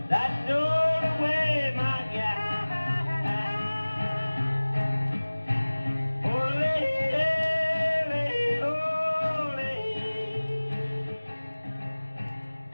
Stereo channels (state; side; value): inverted; both; correlation -1.00